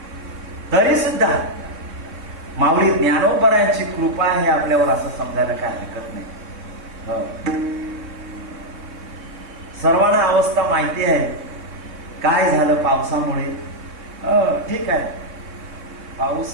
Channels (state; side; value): late; left; 3.6 ms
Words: तरी सुद्धा माऊली ज्ञानोबरायांची कृपा आहे आपल्यावर, असं समजायला काय हरकत नाही. सर्वांना अवस्था माहिती आहे. काय झालं पावसामुळे, ठीक आहे, पाऊस